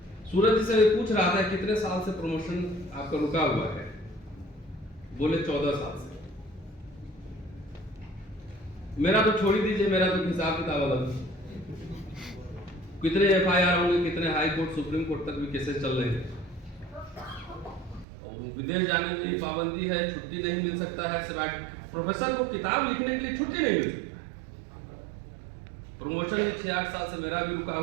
सूरज जी से पूछ रहा था कितने साल से प्रमोशन आपका रुका हुआ है, बोले 14 साल से। मेरा तो छोड़ ही दीजिए, मेरा तो हिसाब किताब अलग। कितने एफआईआर होंगे, कितने हाई कोर्ट, सुप्रीम कोर्ट तक भी केसेस चल रहे हैं, और विदेश जाने की पाबंदी है, छुट्टी नहीं मिल सकता है, प्रोफेसर को किताब लिखने के लिए छुट्टी नहीं मिलती। प्रमोशन 6-8 साल से मेरा भी रुका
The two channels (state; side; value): drops out; left; at 18.1 s